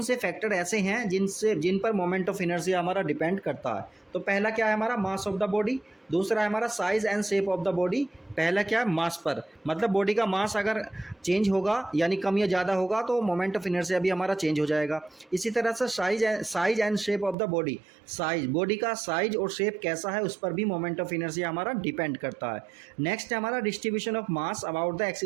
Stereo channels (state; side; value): drops out; left; at 17.4 s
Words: से फैक्टर ऐसे हैं जिन पर मोमेंट ऑफ इनर्शिया हमारा डिपेंड करता है। तो पहला क्या है हमारा, मास ऑफ द बॉडी। दूसरा है हमारा size and shape of the body. पहला क्या है, मास पर, मतलब बॉडी का मास अगर चेंज होगा यानी कम या ज़्यादा होगा तो मोमेंट ऑफ इनर्शिया भी हमारा चेंज हो जाएगा। इसी तरह से size and shape of the body, size, body का साइज और शेप कैसा है उस पर भी मोमेंट ऑफ इनर्शिया हमारा डिपेंड करता है। नेक्स्ट है हमारा distribution of mass about the